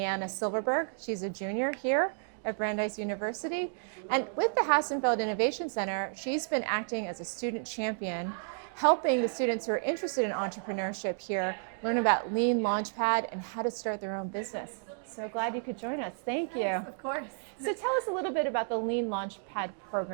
Silverberg. She's a junior here at Brandeis University. And with the Hassenfeld Innovation Center, she's been acting as a student champion, helping the students who are interested in entrepreneurship here learn about Lean Launchpad and how to start their own business. So glad you could join us. Thank you. Yes, of course. So tell us a little bit about the Lean Launchpad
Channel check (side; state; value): left; silent; 55 dB below the other